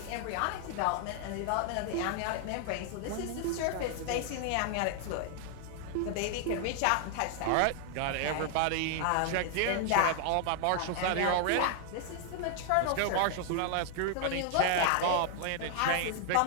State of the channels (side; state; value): both; different; correlation 0.00